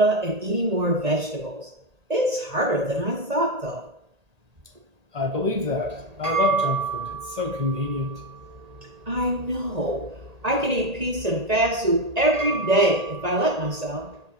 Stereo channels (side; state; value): left; late; 1.8 ms